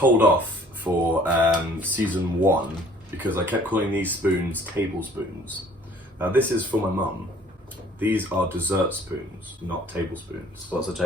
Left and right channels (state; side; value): normal; both; correlation 0.55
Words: off for season 1 because I kept calling these spoons tablespoons. Now this is for my mum. These are dessert spoons, not tablespoons. What's a